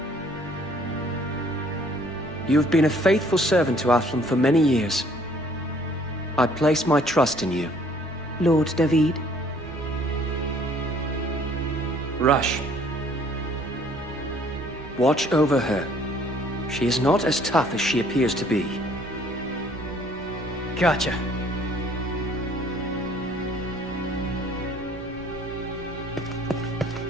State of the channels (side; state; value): both; normal; correlation 0.59